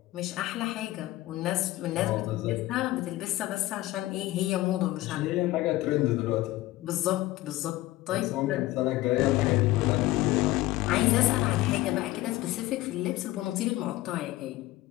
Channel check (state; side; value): quieter; right; 17.1 dB